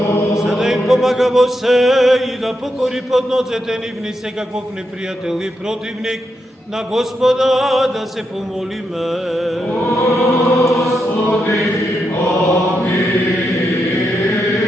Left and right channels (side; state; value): both; normal; correlation 0.84